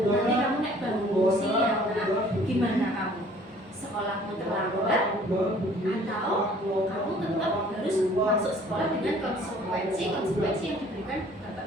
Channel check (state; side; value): normal; both; correlation 0.54